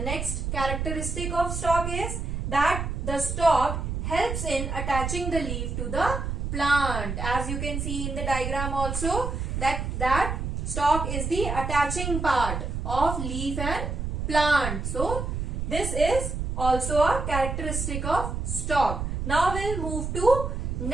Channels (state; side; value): noise; right; rumble, 3 dB below the sound